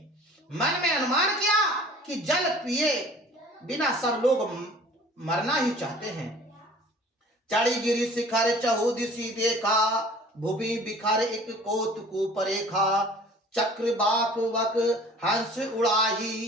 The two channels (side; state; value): both; normal; correlation 0.48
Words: मन में अनुमान किया कि जल पिए बिना सब लोग मरना ही चाहते हैं। चढ़ी गिरी शिखर चहु दिशि देखा, भूमि बिखर एक कोतकु परेखा। चक्र बाक वक हंस